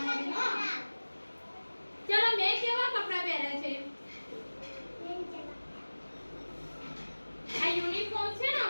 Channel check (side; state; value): both; inverted; correlation -1.00